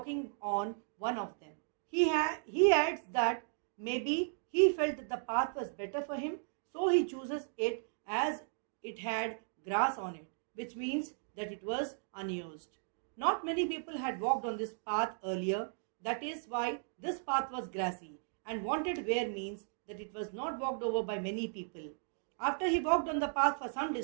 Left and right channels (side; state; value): left; silent; digital silence